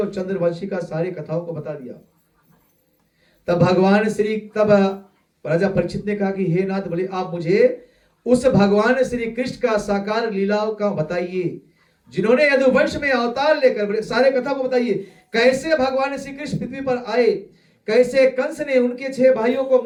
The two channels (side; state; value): both; identical; correlation 1.00